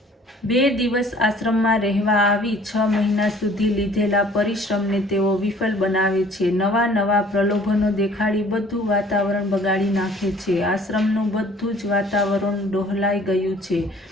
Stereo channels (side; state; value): both; normal; correlation 0.53